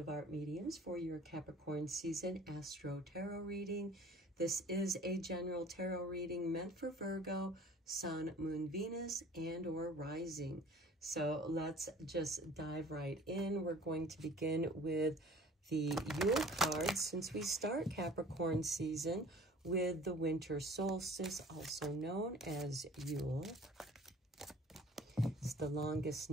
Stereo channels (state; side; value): normal; both; correlation 0.49